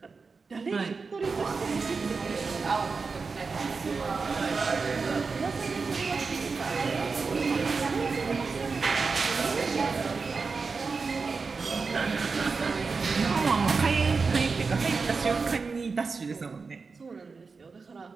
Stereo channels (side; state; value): left; quieter; 4.6 dB